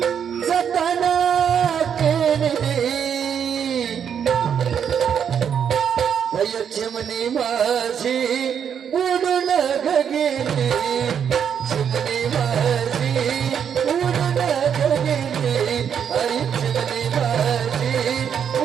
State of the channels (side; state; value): left; quieter; 8.0 dB